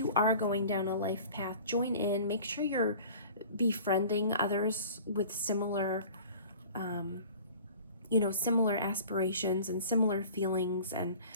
are going down a life path, join in. Make sure you're befriending others with similar, you know, similar aspirations and similar feelings and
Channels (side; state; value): both; inverted; correlation -0.45